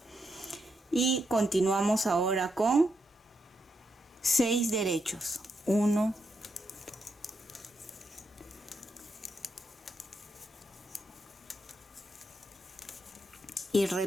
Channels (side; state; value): both; normal; correlation 0.81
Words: Y continuamos ahora con 6 derechos. 1, 2 y